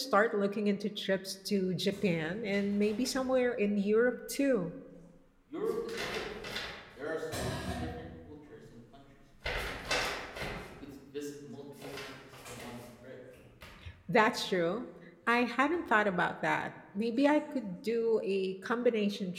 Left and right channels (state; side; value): identical; both; correlation 1.00